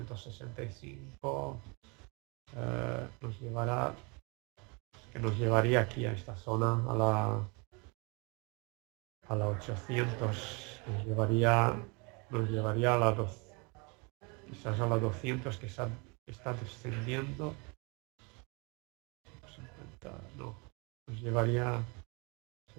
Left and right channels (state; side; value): quieter; left; 30.8 dB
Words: nos llevaría aquí a esta zona, a la 800, nos llevaría a la 2, quizás a la 200, que está descendiendo. 50, no, nos llevaría,